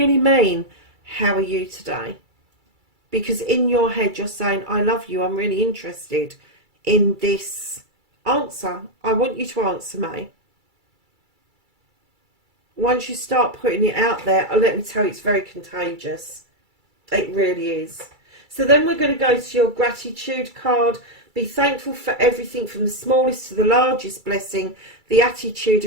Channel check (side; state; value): left; late; 2.3 ms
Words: mean, how are you today? Because in your head you're saying, I love you, I'm really interested in this answer. I want you to answer me. Once you start putting it out there, let me tell you, it's very contagious. It really is. So then we're going to go to your gratitude card. Be thankful for everything from the smallest to the largest blessing. The attitude